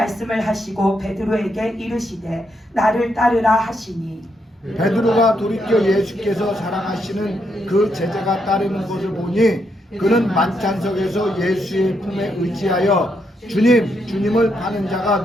하시고 베드로에게 이르시되 나를 따르라 하시니 베드로가 돌이켜 예수께서 사랑하시는 그 제자가 따르는 것을 보니 그는 만찬석에서 예수의 품에 의지하여 주님을 파는 자가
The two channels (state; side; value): normal; both; correlation 0.79